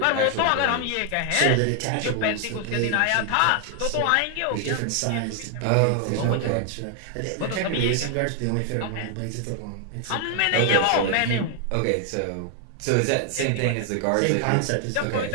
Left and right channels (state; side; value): different; both; correlation 0.00